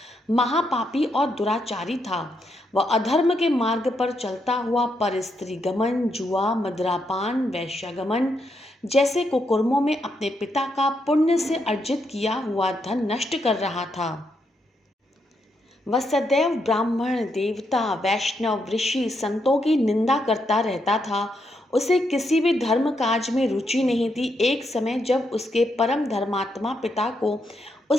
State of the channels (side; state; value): both; normal; correlation 0.80